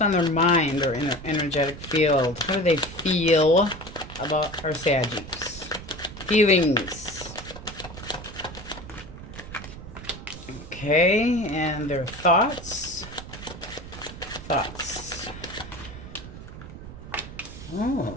on their mind or in their energetic field. How do they feel about our Saggies? Feelings. Okay, and their thoughts. Thoughts.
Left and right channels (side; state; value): right; noise; rumble, 13 dB below the sound